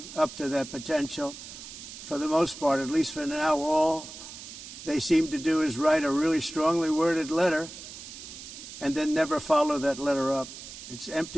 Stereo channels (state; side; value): noise; right; hiss, 13 dB below the sound